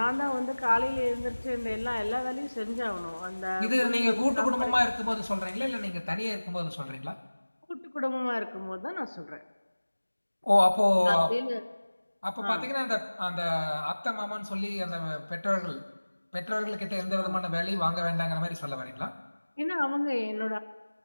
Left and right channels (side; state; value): both; inverted; correlation -1.00